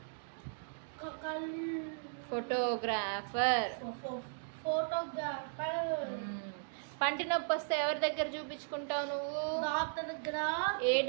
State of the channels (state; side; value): silent; left; digital silence